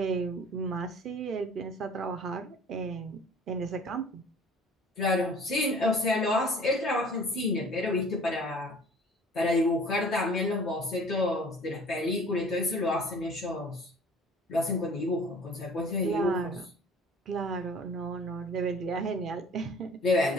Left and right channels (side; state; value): both; normal; correlation 0.49